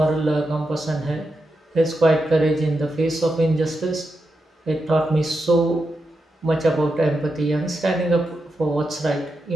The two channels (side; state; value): both; normal; correlation 0.87